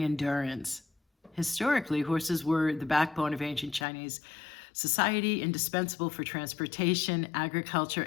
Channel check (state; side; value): drops out; right; at 3.9 s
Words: endurance. Historically, horses were the backbone of ancient Chinese society, indispensable for transportation, agriculture,